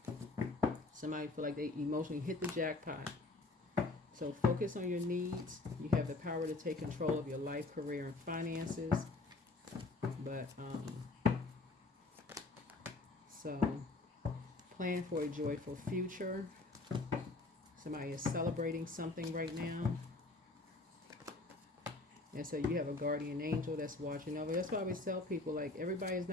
somebody feel like they emotionally hit the jackpot. So focus on your needs. You have the power to take control of your life, career, and finances. But so. Plan for a joyful future. Somebody is celebrating something right now. And so you have a guardian angel that's watching over. That's why I always tell people, like, everybody is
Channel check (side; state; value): right; quieter; 3.3 dB